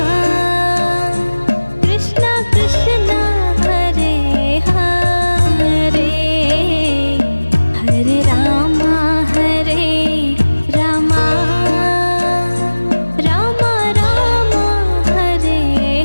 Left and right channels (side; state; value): both; inverted; correlation -1.00